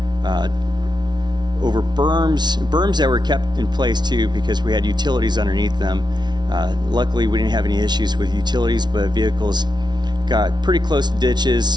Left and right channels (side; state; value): left; late; 0.20 ms